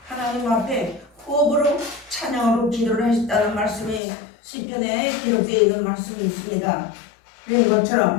하나님 앞에 호흡으로 찬양으로 기도를 하셨다는 말씀이 시편에 기록되어 있는 말씀이 있습니다. 그런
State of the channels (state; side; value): drops out; right; at 4.0 s